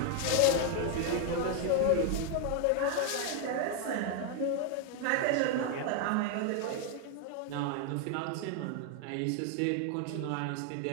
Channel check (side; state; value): both; different; correlation 0.00